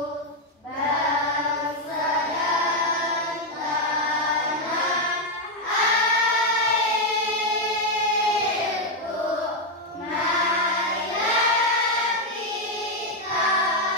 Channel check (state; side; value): normal; both; correlation 0.03